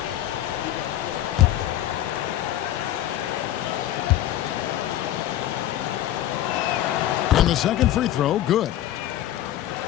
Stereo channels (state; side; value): quieter; right; 12.9 dB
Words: And the second free throw, good.